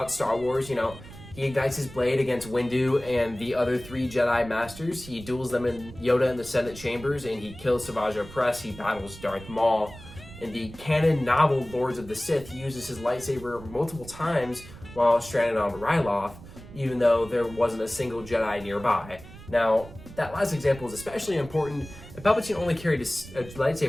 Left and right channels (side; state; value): right; noise; rumble, 16 dB below the sound